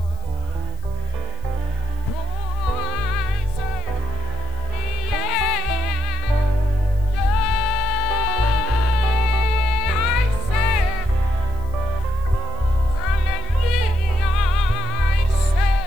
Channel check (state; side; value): noise; right; hiss, 27 dB below the sound